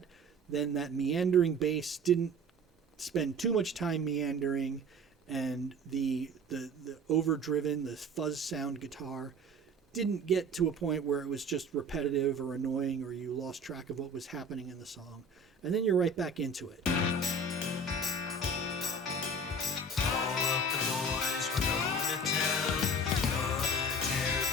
then that meandering bass didn't spend too much time meandering, and the overdriven, the fuzz sound guitar didn't get to a point where it was just repetitive or annoying, or you lost track of what was happening in the song. And then you're right back into it.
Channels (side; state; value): both; normal; correlation 0.41